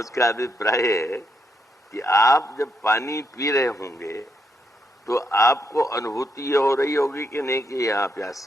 अभिप्राय है कि आप जब पानी पी रहे होंगे तो आपको अनुभूति ये हो रही होगी कि नहीं कि यहाँ प्यास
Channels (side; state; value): both; normal; correlation 0.79